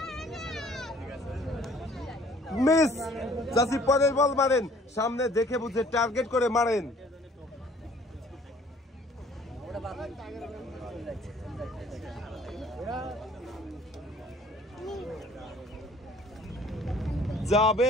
মিস চাচি পরের বল মারেন সামনে দেখে বুঝে টার্গেট করে মারেন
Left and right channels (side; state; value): both; normal; correlation 0.56